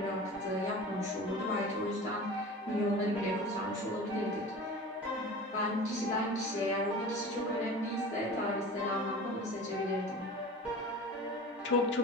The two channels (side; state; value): both; normal; correlation 0.36